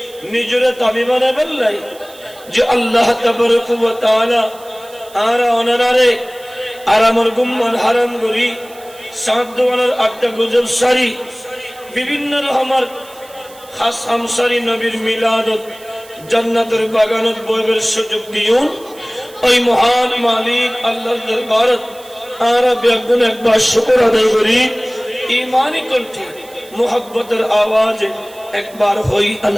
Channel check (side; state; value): right; noise; hiss, 22 dB below the sound